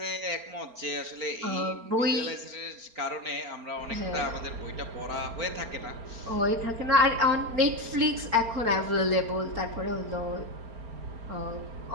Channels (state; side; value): late; left; 4.3 ms